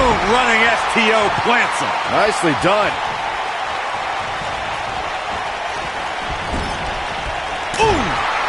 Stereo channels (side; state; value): both; identical; correlation 1.00